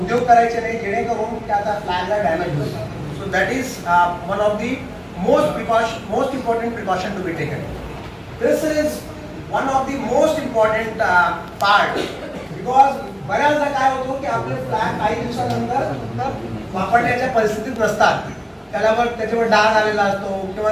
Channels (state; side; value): identical; both; correlation 1.00